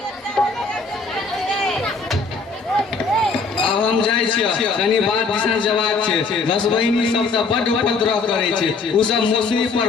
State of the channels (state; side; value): quieter; right; 4.4 dB